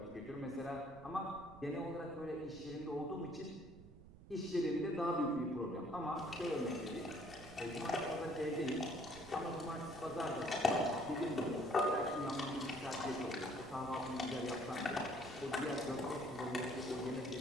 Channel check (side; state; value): right; noise; rumble, 18 dB below the sound